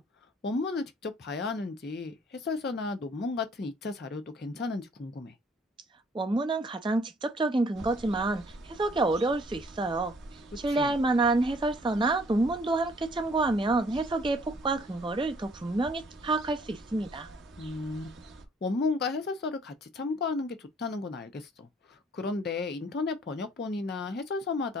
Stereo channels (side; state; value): both; normal; correlation 0.60